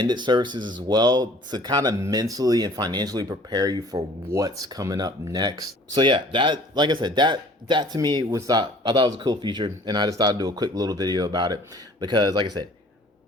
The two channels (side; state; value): both; normal; correlation 0.52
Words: services as well to kind of mentally and financially prepare you for what's coming up next. So yeah, that, like I said, that to me was I thought it was a cool feature, and I just thought I'd do a quick little video about it because, like I said,